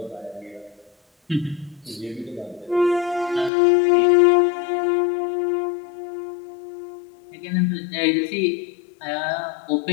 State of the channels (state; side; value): drops out; right; at 3.5 s